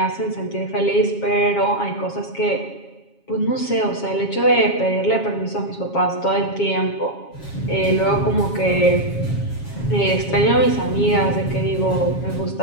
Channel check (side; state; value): right; late; 7.3 ms